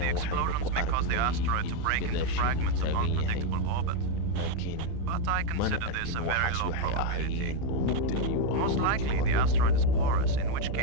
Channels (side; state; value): both; different; correlation 0.02